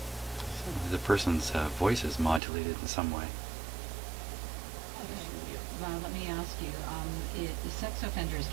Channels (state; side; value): drops out; left; at 2.4 s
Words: So the person's voice is modulated in some way. Okay. Let me ask you, sex offenders